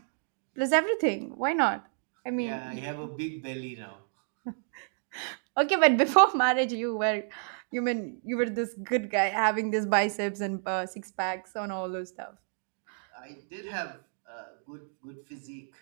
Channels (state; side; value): silent; left; digital silence